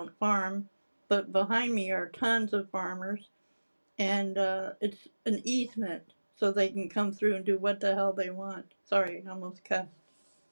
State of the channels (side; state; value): both; inverted; correlation -1.00